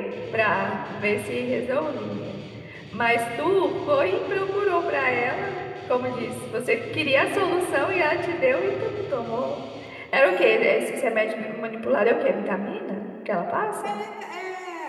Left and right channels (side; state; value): both; identical; correlation 1.00